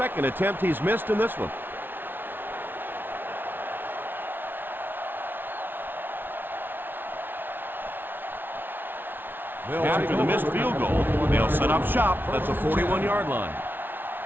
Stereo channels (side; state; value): left; late; 0.097 ms